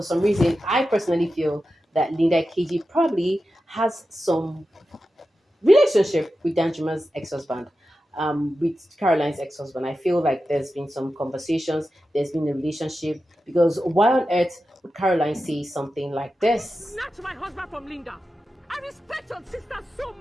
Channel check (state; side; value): normal; both; correlation 0.92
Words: some reason, I personally feel that Linda KG probably has some relationship with Danjuma's ex-husband, with Caroline's ex-husband. I feel like there's been some conversations, there's been a relationship, because why on earth would Caroline say something like this? Snatch my husband from Linda. respect your sister so